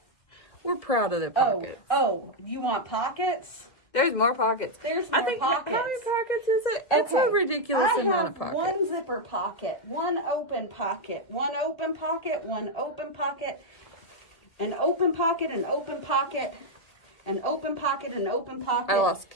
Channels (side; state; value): right; late; 2.0 ms